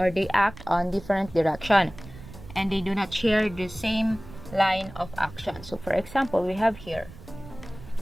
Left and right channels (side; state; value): right; noise; rumble, 16 dB below the sound